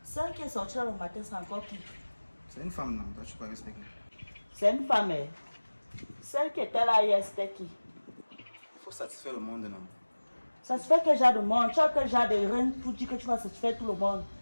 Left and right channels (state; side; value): inverted; both; correlation -1.00